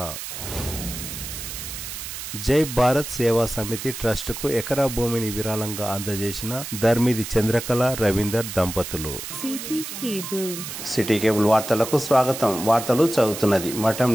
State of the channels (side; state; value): right; noise; hiss, 8 dB below the sound